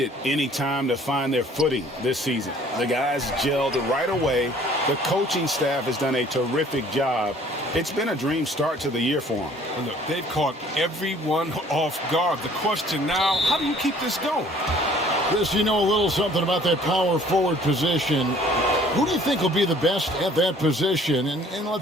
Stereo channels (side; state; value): both; normal; correlation 0.55